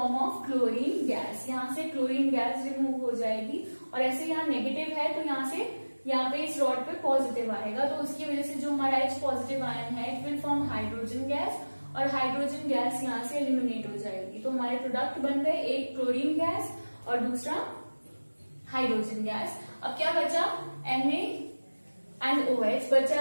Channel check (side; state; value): both; inverted; correlation -1.00